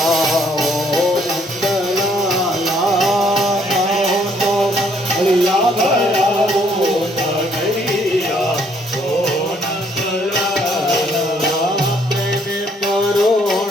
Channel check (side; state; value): both; normal; correlation 0.66